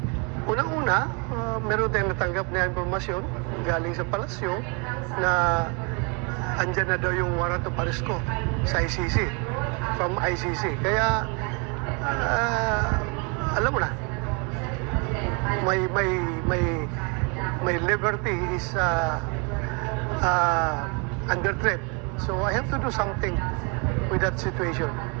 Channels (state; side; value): quieter; left; 33.1 dB